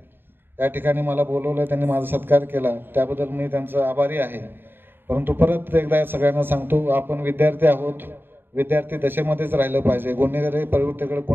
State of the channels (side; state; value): left; late; 0.099 ms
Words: या ठिकाणी मला बोलवलं, त्यांनी माझा सत्कार केला, त्याबद्दल मी त्यांचा आभारी आहे. परंतु परत एकदा सगळ्यांना सांगतो, आपण विद्यार्थी आहोत. विद्यार्थी दशेमध्येच राहिलं पाहिजे. गुन्हेगारी प्रवृत्तीकडे